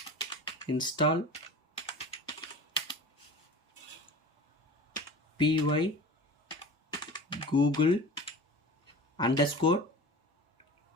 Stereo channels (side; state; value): both; normal; correlation 0.36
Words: install py google _